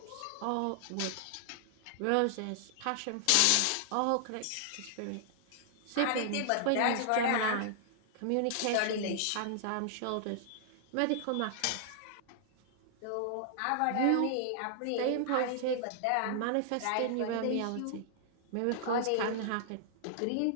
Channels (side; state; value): both; different; correlation -0.01